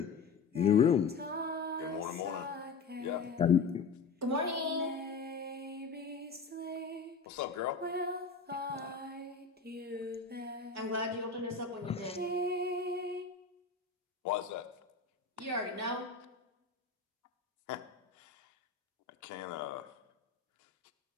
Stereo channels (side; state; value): right; quieter; 5.0 dB